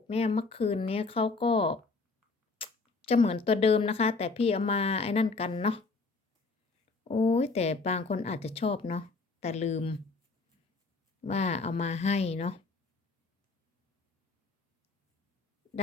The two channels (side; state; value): right; quieter; 4.0 dB